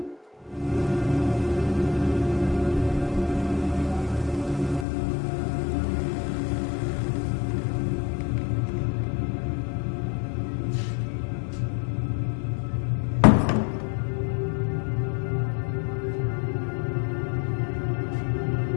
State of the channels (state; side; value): drops out; right; at 4.9 s